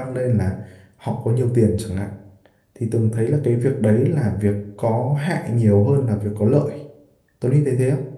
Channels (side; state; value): both; identical; correlation 1.00